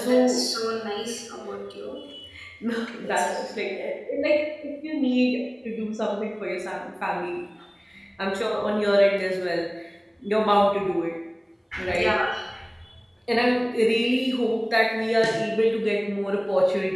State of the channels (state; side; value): identical; both; correlation 1.00